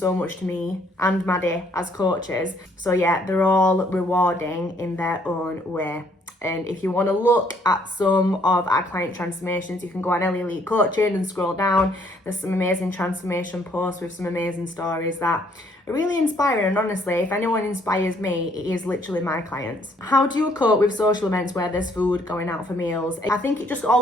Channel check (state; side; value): normal; both; correlation 0.66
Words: much to me and Maddie as coaches. So yeah, they're all rewarding in their own way. And if you want to look at some of our client transformations, you can go on Elite Coaching and scroll down. There's some amazing transformation posts with some amazing stories that are really inspiring. And honestly, if anyone inspires me, it is literally my clients. How do you cope with social events where there's food, going out for meals? I think it just